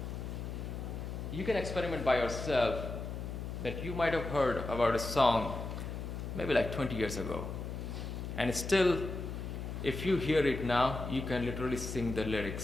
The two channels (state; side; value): noise; left; hum, 6 dB below the sound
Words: you can experiment by yourself that you might have heard about a song maybe like 20 years ago. And still, if you hear it now, you can literally sing the